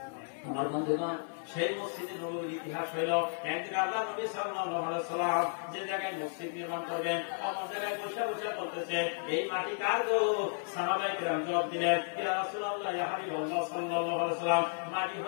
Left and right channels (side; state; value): right; silent; 56 dB below the other